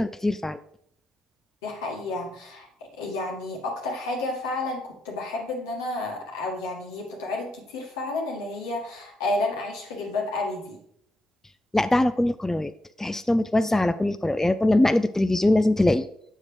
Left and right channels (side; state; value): both; normal; correlation 0.88